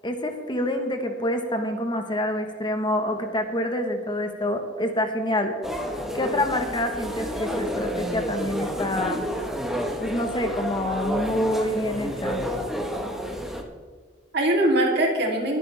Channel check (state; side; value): normal; both; correlation 0.45